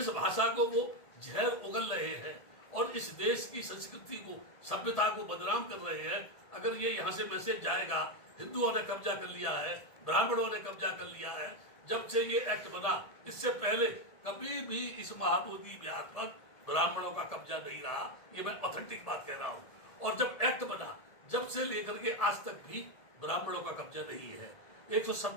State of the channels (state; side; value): late; right; 1.7 ms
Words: भाषा को वो जहर उगल रहे हैं और इस देश की संस्कृति को, सभ्यता को बदनाम कर रहे हैं, अगर ये यहाँ से मैसेज जाएगा हिंदुओं ने कब्जा कर लिया है, ब्राह्मणों ने कब्जा कर लिया है। जब से ये एक्ट बना, इससे पहले कभी भी इस महाबोधि विहार पर ब्राह्मणों का कब्जा नहीं रहा, ये मैं ऑथेंटिक बात कह रहा हूँ। और जब एक्ट बना, जब से लेकर के आज तक भी ब्राह्मणों का कब्जा नहीं है।